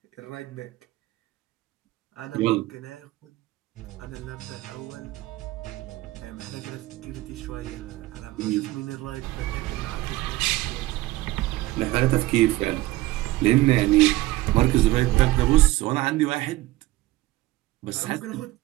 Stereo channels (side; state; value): left; quieter; 17.9 dB